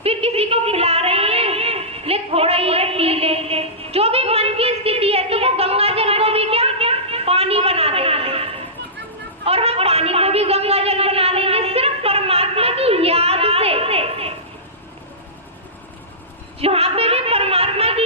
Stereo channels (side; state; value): both; normal; correlation -0.19